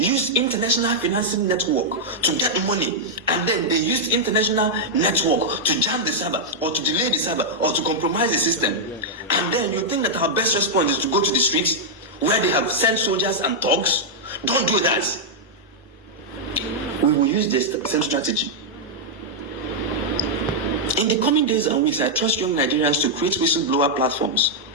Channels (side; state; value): both; normal; correlation -0.06